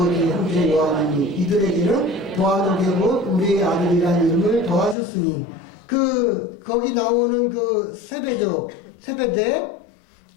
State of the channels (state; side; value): drops out; right; at 5.0 s